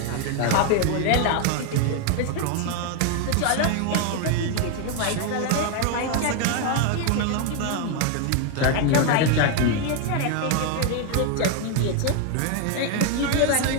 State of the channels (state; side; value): different; both; correlation 0.01